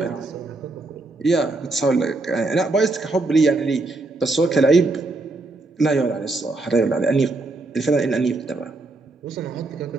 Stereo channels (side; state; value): left; quieter; 3.1 dB